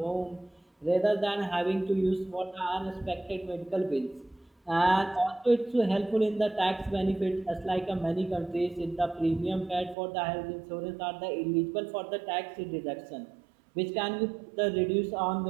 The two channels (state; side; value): drops out; left; at 10.0 s